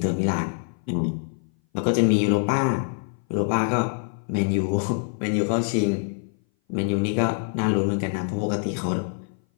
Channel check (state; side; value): silent; right; 58 dB below the other